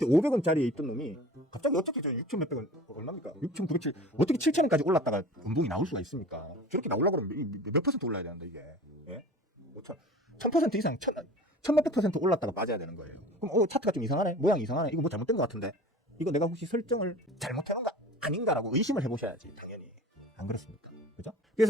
500원짜리에 있던 놈이 갑자기 어떻게 저 6천 몇백 원 얼마입니까? 6,907 어떻게 7,000원까지 올랐다가 연봉이 나올 수가 있습니까? 저렇게 나오려고 그러면 몇 퍼센트 올라야 되는데 이게 1000% 이상 1000몇백 퍼센트 올랐다가 빠져야 되는 거예요. 그럼 차트가 좀 이상하네, 모양이 이상하네, 이거 뭐 잘못된 것 같은데 이거 내가 혹시 설정을 잘못해놓은 거 아닌가라고 의심을 해보셔야지. 당연히 안 그렇습니까? 그죠?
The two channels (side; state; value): both; normal; correlation 0.40